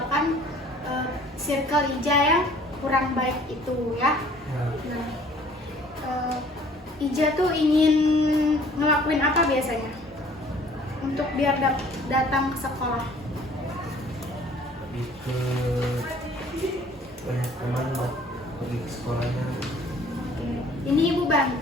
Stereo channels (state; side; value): normal; both; correlation 0.54